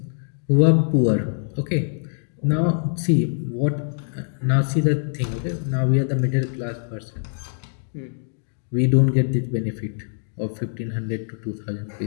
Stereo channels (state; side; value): silent; right; digital silence